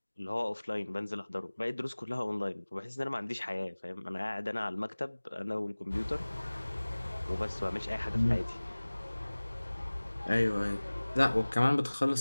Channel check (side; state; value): both; inverted; correlation -1.00